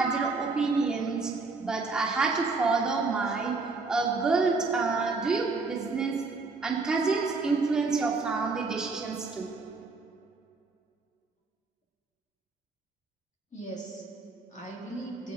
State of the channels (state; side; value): quieter; left; 4.0 dB